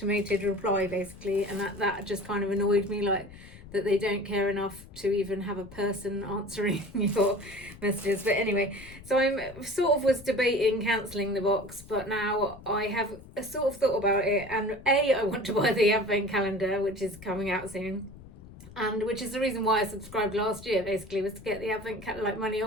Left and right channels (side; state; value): left; noise; rumble, 18 dB below the sound